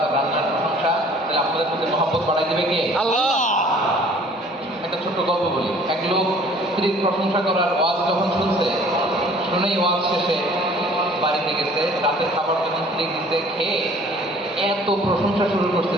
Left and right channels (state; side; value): normal; both; correlation 0.52